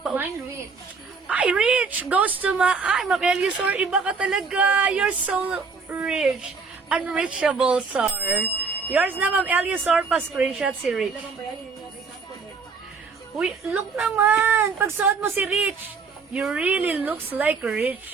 rich. Ay, rich! Goes to Ma'am Eliusor, iba ka talaga. You're so rich. Unreachable, sir. Yours na, Ma'am Eliusor, pa-screenshot si Rich. Uy, look naman! Pag suot mo si Rich, you really looks like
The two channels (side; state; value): left; quieter; 4.9 dB